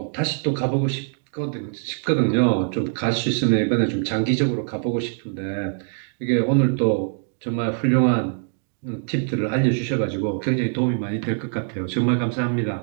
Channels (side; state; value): left; silent; 63 dB below the other